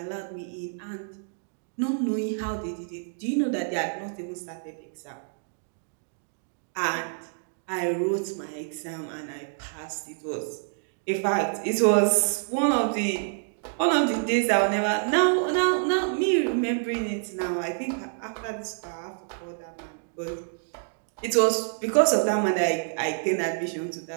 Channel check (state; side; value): silent; left; digital silence